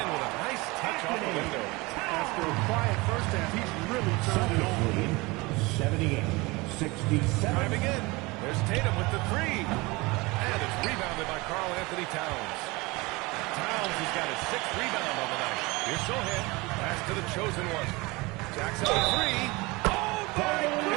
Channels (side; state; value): left; quieter; 23.9 dB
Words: with a nice touch off the window. After a quiet first half, he's really turned it on. 78-67. Driving in. There's Tatum with the 3. And it's rebounded by Karl Anthony Towns. Towns has got his 6th rebound on the night. Here's Sohan. Pass to the chosen one. Jackson with 3. Oh, my